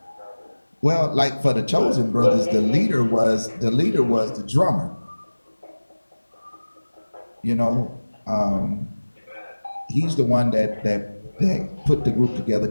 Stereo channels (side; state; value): both; inverted; correlation -1.00